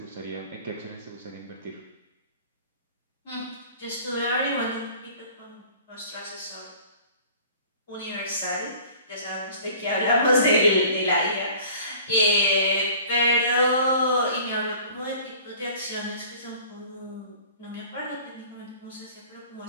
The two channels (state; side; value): inverted; both; correlation -0.48